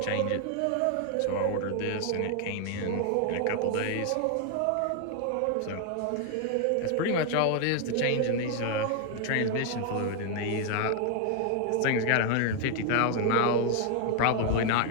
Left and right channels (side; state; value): both; different; correlation 0.01